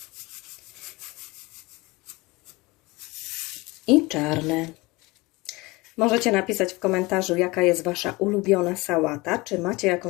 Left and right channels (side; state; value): right; quieter; 23.1 dB